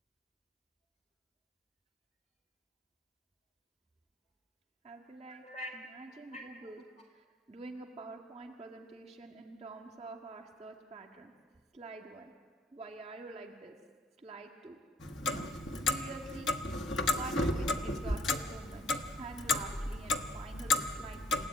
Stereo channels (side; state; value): both; normal; correlation 0.62